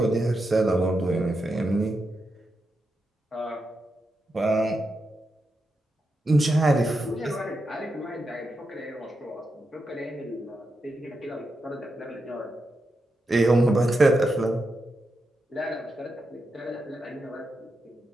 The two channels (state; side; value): normal; both; correlation 0.86